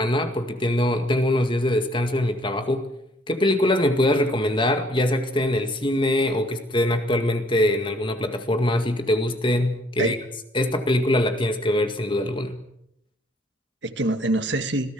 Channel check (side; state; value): both; normal; correlation 0.63